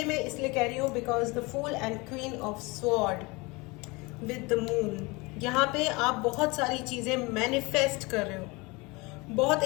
मैं इसलिए कह रही हूँ because the fool and queen of sword with the moon, यहाँ पे आप बहुत सारी चीजें मैनिफेस्ट कर रहे हो, बहुत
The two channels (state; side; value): quieter; right; 25.3 dB